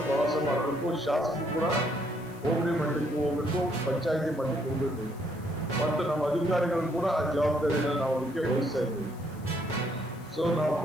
ಪ್ರವಾಸ ಮಾಡಬೇಕು. ಶಾಸಕರು ಕೂಡ ಹೋಬಳಿ ಮಟ್ಟಕ್ಕೆ ಹೋಗ್ಬೇಕು, ಪಂಚಾಯತಿ ಮಟ್ಟಕ್ಕೆ ಹೋಗ್ಬೇಕು ಮತ್ತು ನಮ್ಮ ಅಧಿಕಾರಿಗಳು ಕೂಡ ಆ ಜವಾಬ್ದಾರಿಯನ್ನು ನಾವು ಅದಕ್ಕೆ ವಹಿಸ್ತಾ ಇದ್ದೀವಿ. ಸೊ ನಾವು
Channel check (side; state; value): left; noise; hiss, 25 dB below the sound